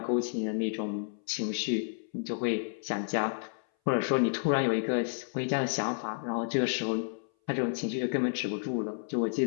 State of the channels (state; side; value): silent; right; 57 dB below the other